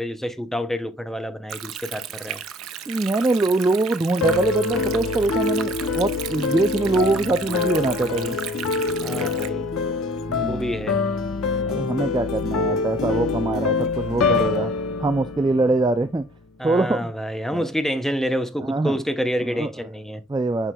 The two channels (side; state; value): both; normal; correlation 0.56